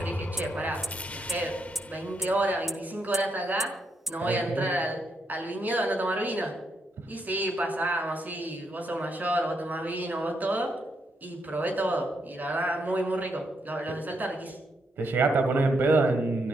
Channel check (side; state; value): both; normal; correlation 0.78